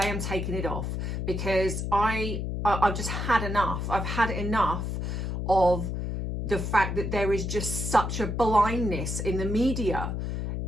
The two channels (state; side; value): noise; left; hum, 3 dB below the sound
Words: I'm taking it off because I've just had enough. I've had enough of the fact that there is just such a blindness in the media